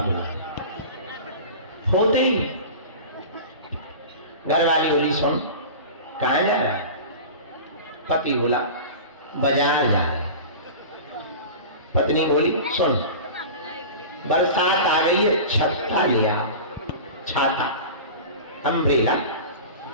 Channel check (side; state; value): both; inverted; correlation -0.33